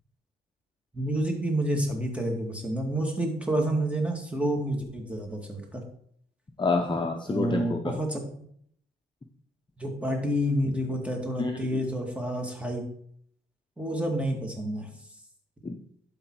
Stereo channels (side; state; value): both; normal; correlation 0.73